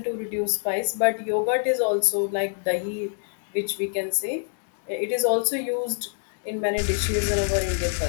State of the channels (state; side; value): silent; right; 61 dB below the other